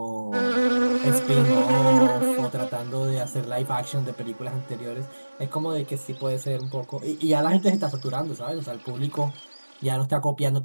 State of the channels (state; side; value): inverted; both; correlation -1.00